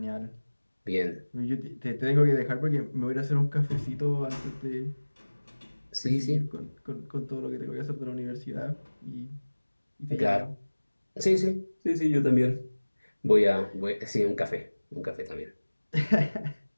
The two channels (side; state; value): both; inverted; correlation -1.00